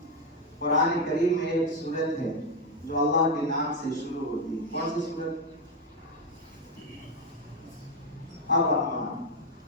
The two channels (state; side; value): normal; both; correlation 0.06